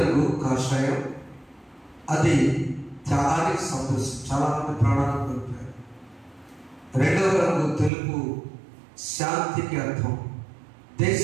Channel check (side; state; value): left; drops out; at 7.9 s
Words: కాషాయం, అది త్యాగానికి సంతోషం, చాలా మంది ప్రాణాలను కోల్పోయారు. రెండవ రంగు తెలుపు, శాంతికి అర్థం,